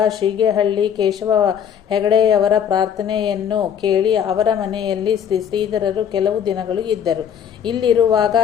ಶೀಗೆಹಳ್ಳಿ ಕೇಶವ ಹೆಗಡೆಯವರ ಪ್ರಾರ್ಥನೆಯನ್ನು ಕೇಳಿ ಅವರ ಮನೆಯಲ್ಲಿ ಶ್ರೀಧರರು ಕೆಲವು ದಿನಗಳು ಇದ್ದರು. ಇಲ್ಲಿರುವಾಗ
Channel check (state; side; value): quieter; right; 8.5 dB